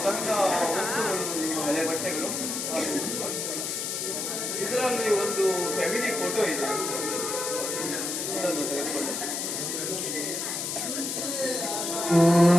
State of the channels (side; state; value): left; noise; hiss, 3 dB below the sound